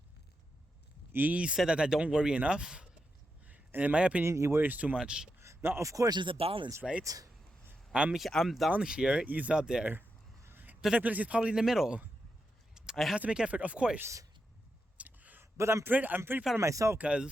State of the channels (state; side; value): normal; both; correlation 0.86